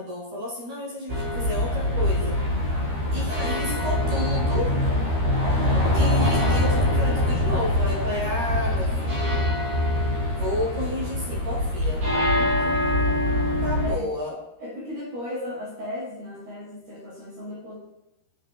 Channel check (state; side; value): late; left; 13 ms